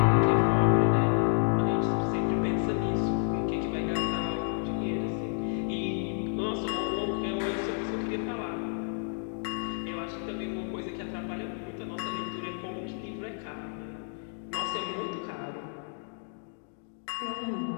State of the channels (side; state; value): right; silent; 58 dB below the other